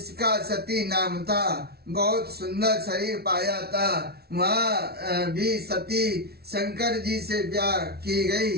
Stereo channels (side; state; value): left; late; 0.45 ms